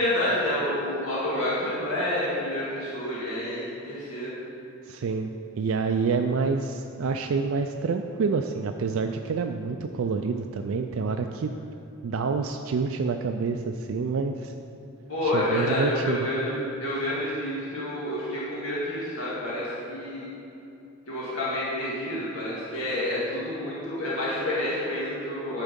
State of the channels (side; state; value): both; normal; correlation 0.19